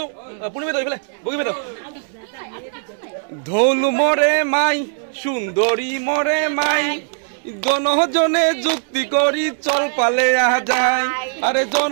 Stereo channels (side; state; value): left; silent; digital silence